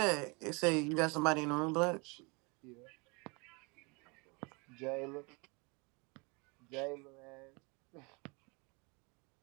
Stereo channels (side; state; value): left; quieter; 29.6 dB